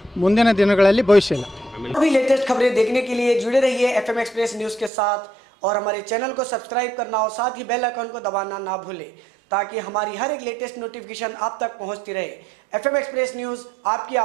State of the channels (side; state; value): left; drops out; at 4.9 s